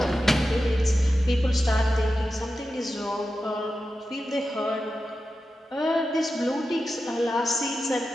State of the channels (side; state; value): both; normal; correlation 0.92